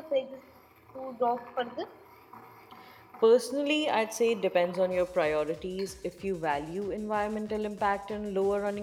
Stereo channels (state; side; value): identical; both; correlation 1.00